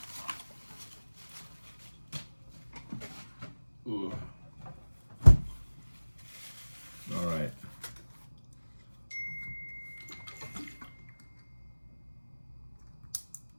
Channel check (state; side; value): inverted; both; correlation -1.00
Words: Ooh. All right.